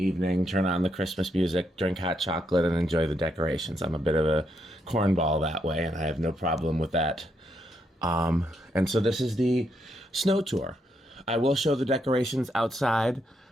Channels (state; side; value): normal; both; correlation 0.78